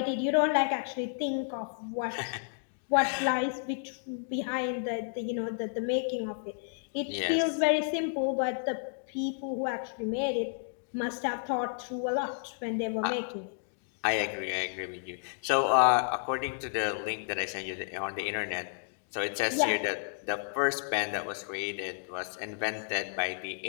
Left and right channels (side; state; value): right; silent; digital silence